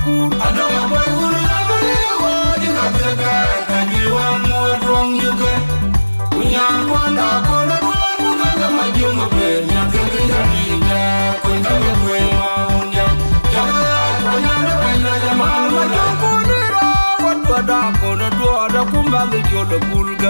adama boy uru abali woji gataka kajiwan mo rong yuke unyan kwanda kono duan mugaga majunga pe nyakenge jadida kwenda kwe maunja jaga kwanyana kwenda jamal majobunira wadwada kono dwada kumbangi jodo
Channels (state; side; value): inverted; both; correlation -1.00